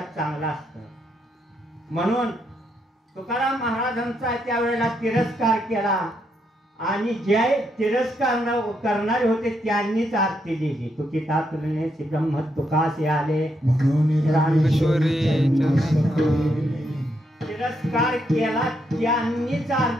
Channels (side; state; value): both; normal; correlation 0.78